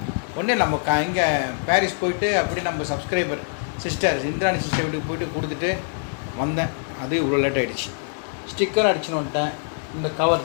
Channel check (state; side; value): silent; right; digital silence